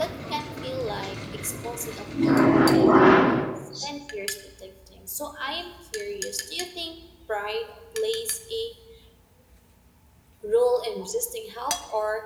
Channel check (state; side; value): identical; both; correlation 1.00